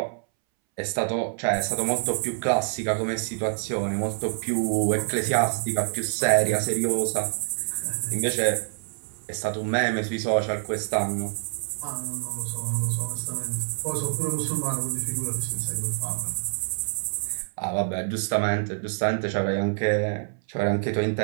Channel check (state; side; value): silent; left; 61 dB below the other